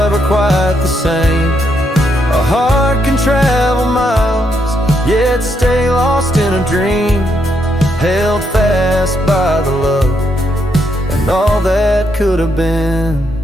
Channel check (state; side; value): normal; both; correlation 0.77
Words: quite the same. A heart can travel miles, yet stay lost in a dream, held fast by the love and all that could have been.